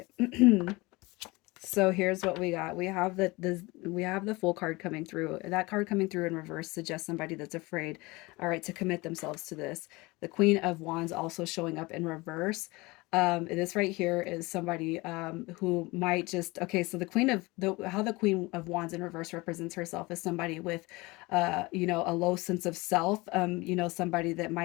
So here's what we got. We have the Fool card coming through. That card coming through in reverse suggests somebody that's afraid, all right, to commit themselves to this. The Queen of Wands also showing up in reverse. This right here is somebody who might just, okay, so how the Queen of Wands in reverse represents herself is somebody with a low sense of self, somebody that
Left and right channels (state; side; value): quieter; right; 23.2 dB